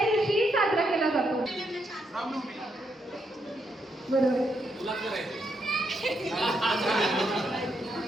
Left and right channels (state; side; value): normal; both; correlation 0.79